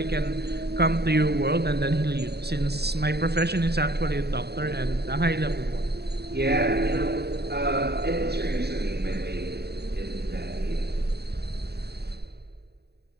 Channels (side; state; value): left; late; 0.48 ms